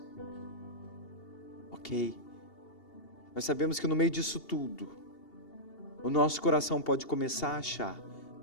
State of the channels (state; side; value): late; right; 2.8 ms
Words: ok? Nós sabemos que no meio disso tudo, o nosso coração pode começar a achar